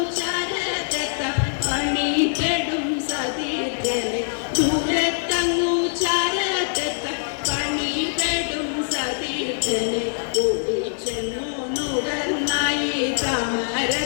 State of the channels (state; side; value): silent; right; 57 dB below the other